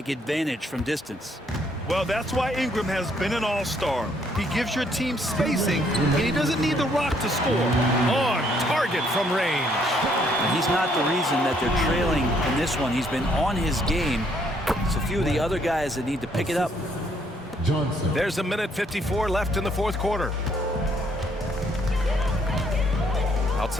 advantage from distance. Well, that's why Ingram has been an all-star. He gives your team spacing, and he doesn't need the rock to score. On target from range. And he's not the reason that they're trailing in this one. He's been on his game. It's a few of the other guys that need to pick it up. Johnson. There's a minute 54 left in the fourth quarter.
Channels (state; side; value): normal; both; correlation 0.68